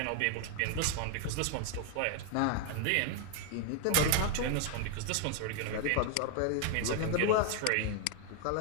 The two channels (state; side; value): different; both; correlation 0.00